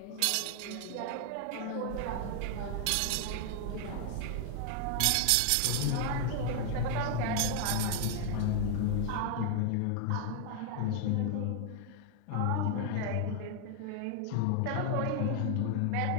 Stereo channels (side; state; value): both; different; correlation 0.00